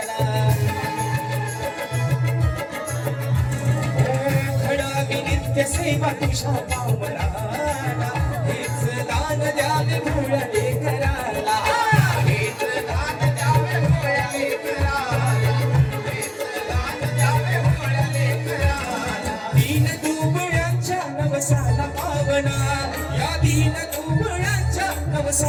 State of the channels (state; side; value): identical; both; correlation 1.00